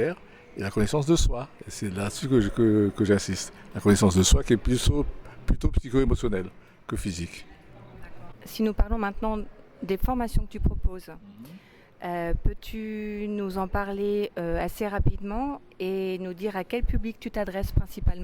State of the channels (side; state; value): both; identical; correlation 1.00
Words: et la connaissance de soi. Et c'est là-dessus que j'insiste. La connaissance de soi qui est plutôt psycho-émotionnelle que physique. Si nous parlons maintenant des formations que tu proposes, peux-tu nous en parler assez rapidement et nous dire à quel public tu t'adresses